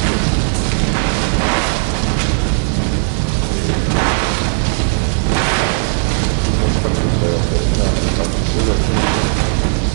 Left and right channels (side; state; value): left; silent; digital silence